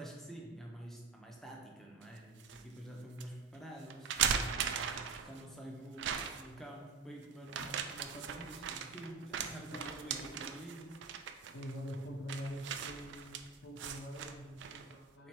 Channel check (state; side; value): quieter; left; 5.4 dB